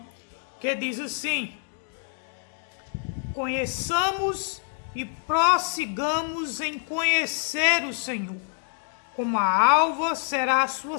que diz assim: conheçamos e prossigamos em conhecer o Senhor. Como a alva será a sua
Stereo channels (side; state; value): right; silent; 60 dB below the other